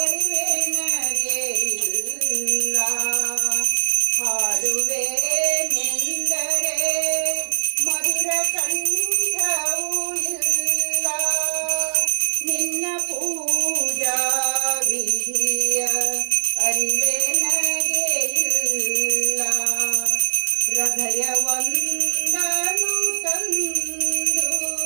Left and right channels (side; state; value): left; silent; digital silence